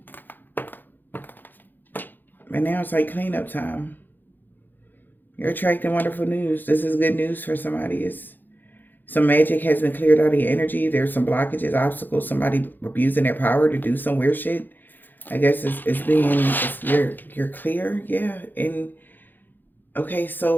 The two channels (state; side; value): late; right; 0.089 ms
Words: And now it's like cleanup time. You're attracting wonderful news. This is good news for somebody. Some magic has been cleared out of your energy. There's some blockages, obstacles, somebody abusing their power to do some weird shit. I guess you're clear. Yeah. And okay,